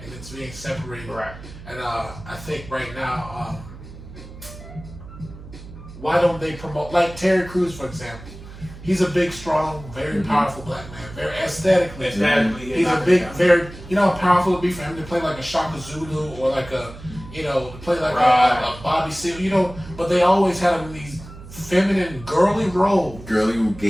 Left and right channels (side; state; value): right; noise; hum, 16 dB below the sound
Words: and it's being separated. Right. And I think right now why don't they promote, like Terry Crews, for example. He's a big, strong, very powerful black man. Very aesthetically. He's a big, very, you know how powerful it'd be for him to play like a Shaka Zulu or like a, you know, to play like a Bobby Seale, you know, but they always had him in these feminine, girly roles.